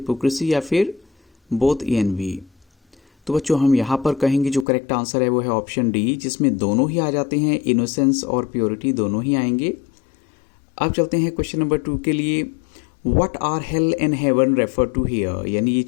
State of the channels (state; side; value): drops out; right; at 4.7 s